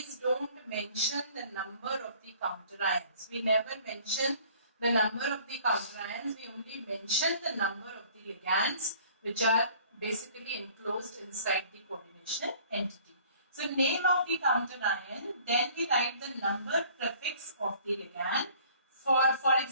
don't mention the number of the counter ions. We never mention the number of the counter ions, we only mention the number of the ligands which are basically enclosed inside the coordination entity. So name of the counter ion, then we write the number prefix of the ligand. For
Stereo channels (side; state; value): both; inverted; correlation -0.53